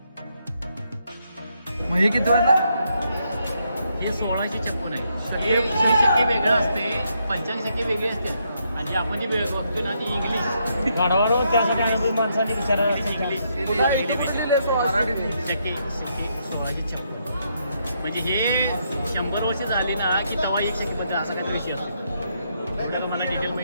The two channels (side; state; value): both; inverted; correlation -0.77